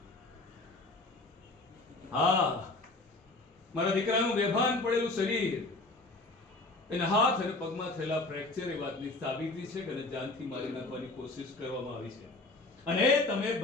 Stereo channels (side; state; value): right; quieter; 3.1 dB